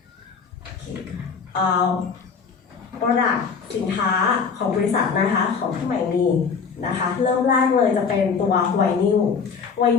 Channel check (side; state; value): right; quieter; 5.8 dB